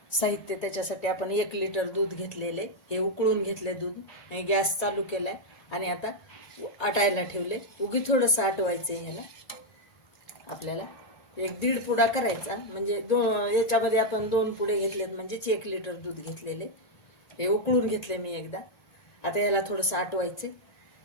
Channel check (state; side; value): late; right; 1.9 ms